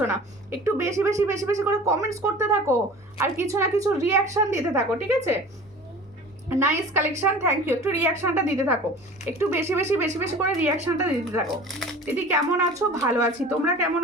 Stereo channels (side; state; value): both; normal; correlation 0.41